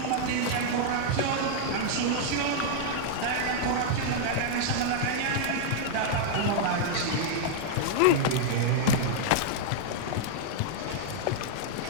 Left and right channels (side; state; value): both; different; correlation -0.01